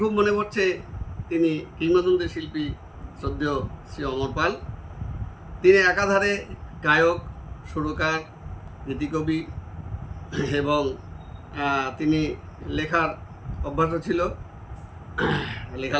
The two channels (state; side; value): identical; both; correlation 1.00